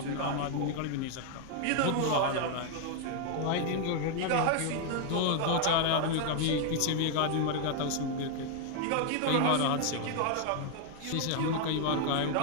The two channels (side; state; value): both; different; correlation 0.00